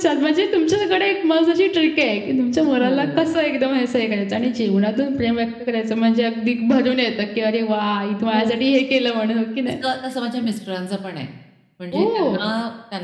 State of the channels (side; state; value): both; identical; correlation 1.00